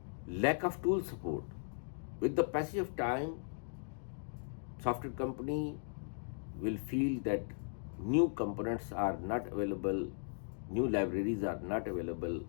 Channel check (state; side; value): silent; right; digital silence